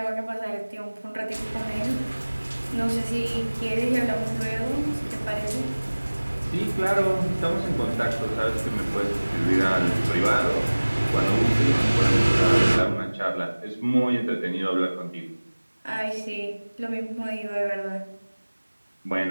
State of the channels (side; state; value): both; inverted; correlation -1.00